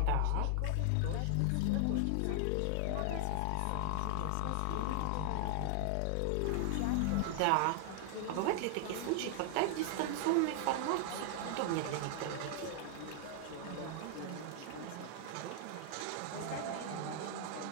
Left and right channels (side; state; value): both; different; correlation 0.00